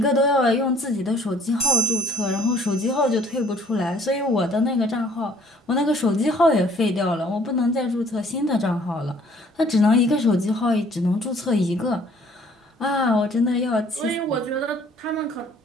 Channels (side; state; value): both; normal; correlation 0.58